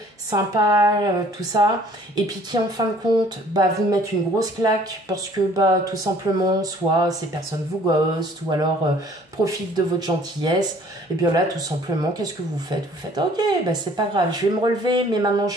sympas, tout ça, et puis qui en fin de compte vous mettent une grosse claque parce que tout simplement soit ces personnes vous ghostent ou alors profitent de votre gentillesse. Et bien là tout simplement qu'est-ce que vous faites? Vous faites ok, c'est pas grave, je vais me relever, mais maintenant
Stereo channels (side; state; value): both; normal; correlation 0.55